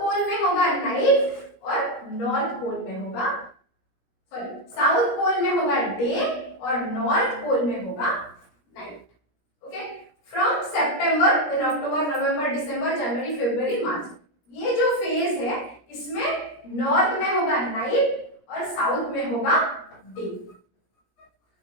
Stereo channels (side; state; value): right; late; 17 ms